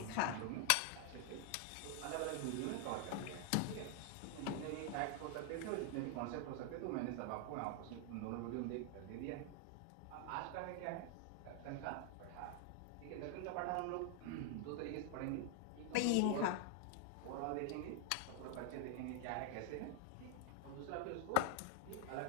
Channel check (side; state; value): both; different; correlation 0.00